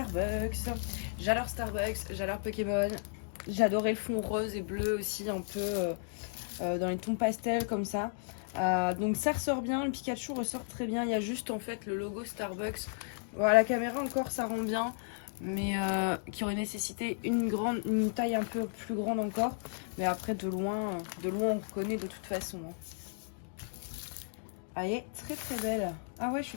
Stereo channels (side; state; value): right; silent; digital silence